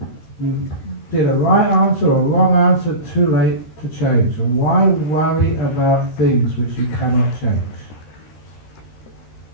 You did a right answer or a wrong answer, too late to change. And why worry about things which you cannot change?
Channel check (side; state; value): right; late; 13 ms